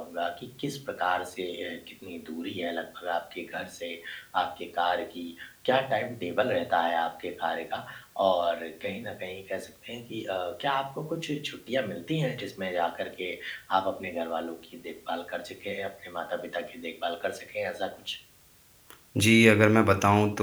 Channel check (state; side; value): identical; both; correlation 1.00